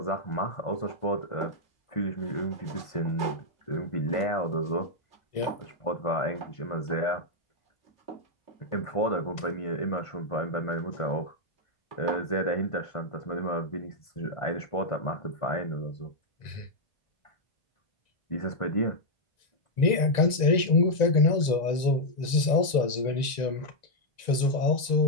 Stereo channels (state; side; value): late; right; 1.9 ms